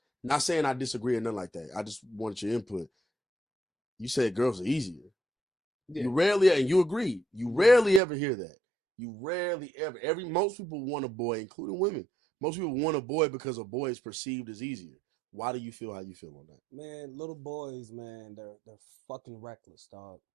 Not saying I disagree or nothing like that. I just wanted your input. You said girls are easier. Yeah. You rarely, and you agree. You rarely ever hear that. You rarely ever. Most people want a boy, including women. Most people want a boy because a boy is perceived as easier. Why do you feel how you feel on that? Man, little boys, man, they're fucking reckless, dog.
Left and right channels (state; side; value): drops out; left; at 8.0 s